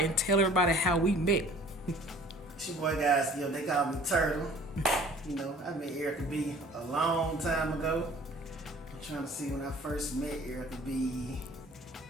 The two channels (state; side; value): normal; both; correlation 0.50